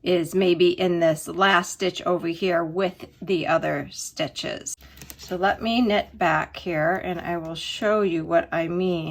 is maybe in this last stitch over here with the other stitches. So let me knit back here and I will show you what I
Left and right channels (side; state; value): both; identical; correlation 1.00